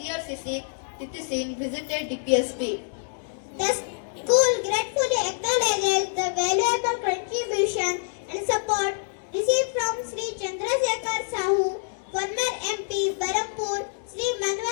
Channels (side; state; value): right; silent; digital silence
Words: Titi Singh visited DPSP. The school gratefully acknowledges the valuable contribution and support received from Sri Chandrasekhar Sahu, former MP Barampur, Sri